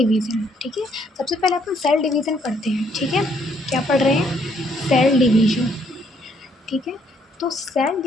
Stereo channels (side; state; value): both; normal; correlation 0.69